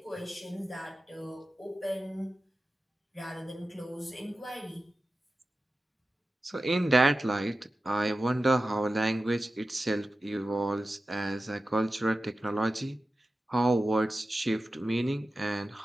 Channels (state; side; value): normal; both; correlation 0.94